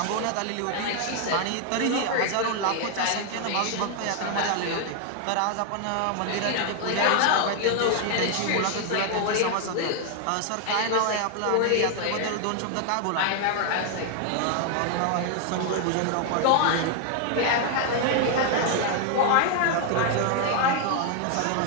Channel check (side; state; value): both; different; correlation 0.00